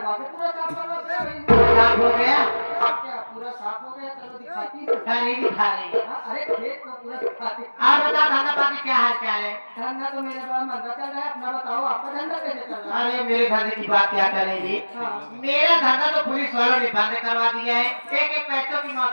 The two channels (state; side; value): inverted; both; correlation -1.00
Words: के पूरा साफ करवा दे भाई। साफ हो गया? क्या पूरा साफ हो गया? चलो दिखाती हूँ। नहीं दिखा रही। हाँ, अरे खेत को पूरा दिखाती। आप बता धंधा पाती क्या हाल चाल है? धंधा तो मेरे पास मंदा चल रहा है, अपना बताओ आपका धंधा कैसे चल रहा है? अरे मेरे धंधे की बात क्या करेंगे? हाँ। मेरा धंधा तो पुलिस वालों ने बंद करवा दिया है। एक एक पैसों की